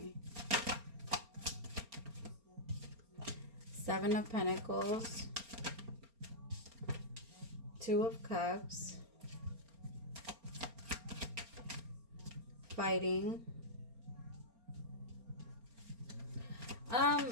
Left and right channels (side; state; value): left; late; 4.3 ms